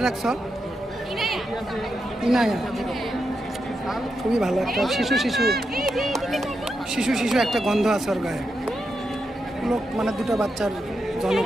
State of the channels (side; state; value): both; normal; correlation 0.86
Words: রাখছো? ইনায়া। খুবই ভালো একটা শিশু শিশু শিশু শিশু একটা গন্ধ আছে ওর গায়ে। লোক মানে দুটো বাচ্চার